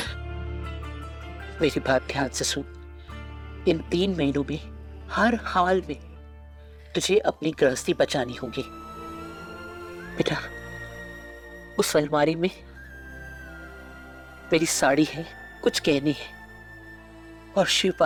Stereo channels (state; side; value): identical; both; correlation 1.00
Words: मेरी बात ध्यान से सुन। इन 3 महीनों में हर हाल में तुझे अपनी गृहस्थी बचानी होगी। बेटा, उस अलमारी में मेरी साड़ी है, कुछ गहने हैं और शिव